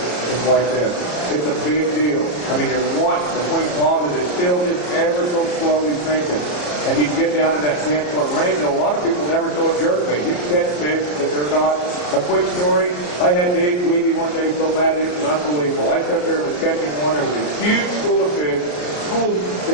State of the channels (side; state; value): right; late; 34 ms